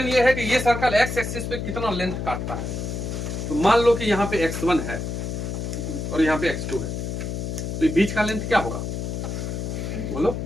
ये है कि ये सर्कल एक्स एक्सिस पे कितना लेंथ काटता है, तो मान लो कि यहाँ पे x1 है और यहाँ पे x2 है, तो ये बीच का लेंथ क्या होगा, बोलो,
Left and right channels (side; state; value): left; noise; hum, 4 dB below the sound